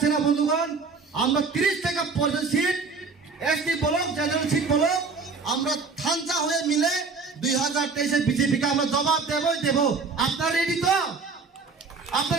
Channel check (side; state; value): left; quieter; 4.6 dB